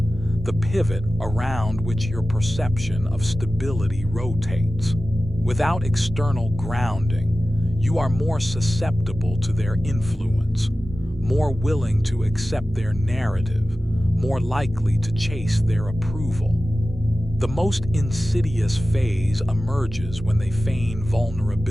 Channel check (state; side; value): normal; both; correlation 0.96